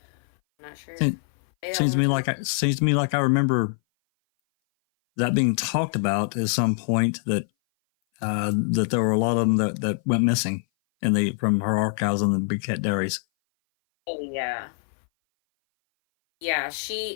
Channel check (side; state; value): right; silent; 58 dB below the other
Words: not sure. Seems to me like I remember that being talked about at some point, that that there were a lot of them that went missing from her archives on the Big Cat Diaries. Oh yeah. Yeah,